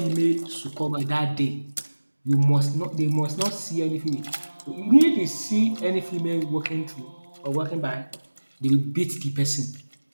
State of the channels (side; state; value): both; inverted; correlation -1.00